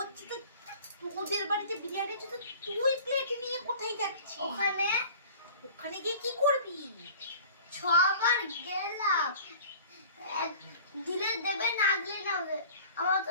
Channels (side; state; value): both; inverted; correlation -0.45